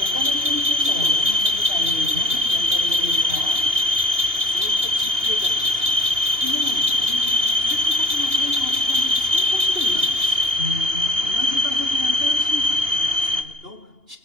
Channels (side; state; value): left; late; 2.8 ms